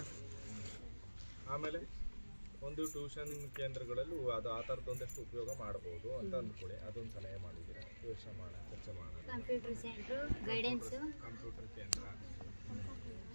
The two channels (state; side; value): inverted; both; correlation -1.00